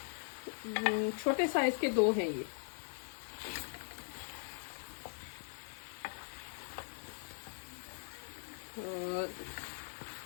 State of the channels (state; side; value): silent; right; 51 dB below the other